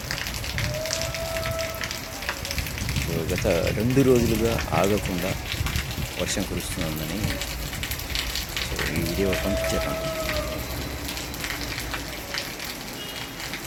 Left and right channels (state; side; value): identical; both; correlation 1.00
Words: సో గత 2 రోజులుగా ఆగకుండా వర్షం కురుస్తుందని సో ఈ వీడియో పంపించాను,